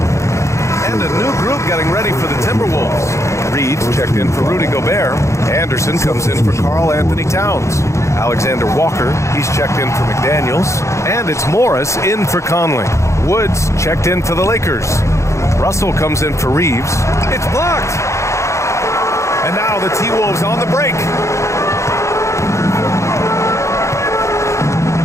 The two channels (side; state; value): right; late; 0.14 ms